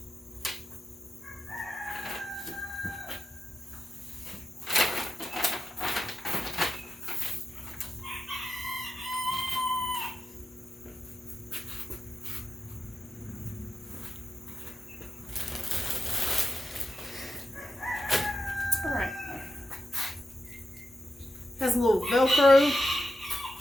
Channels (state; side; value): normal; both; correlation 0.90